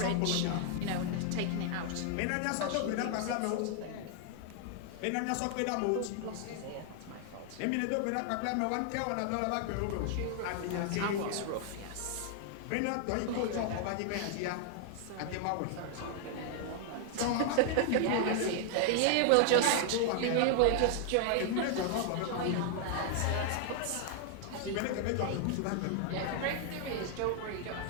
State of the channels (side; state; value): both; different; correlation 0.00